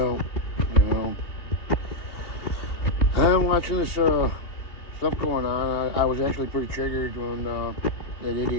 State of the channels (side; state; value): right; late; 3.1 ms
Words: you know, I'm watching this stuff going on. I was actually pretty triggered when that